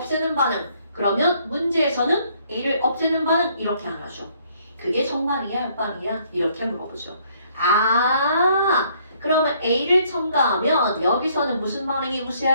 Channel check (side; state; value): both; inverted; correlation -0.65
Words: 반응. 그러면 문제에서는 A를 없애는 반응 이렇게 안 하죠. 그게 정반응이야, 역반응이야? 이렇게 물어보죠. 아, 그러면 A를 첨가하면 여기서는 무슨 반응이